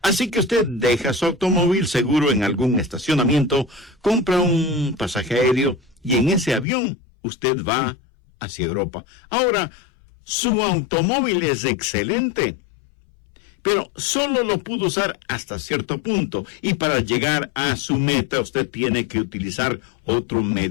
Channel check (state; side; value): drops out; right; at 6.7 s